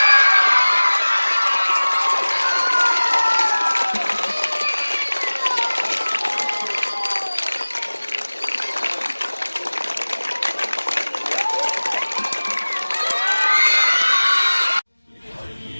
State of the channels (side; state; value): both; inverted; correlation -1.00